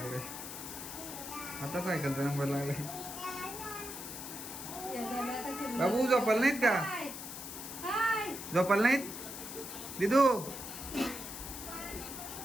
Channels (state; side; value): noise; left; hiss, 9 dB below the sound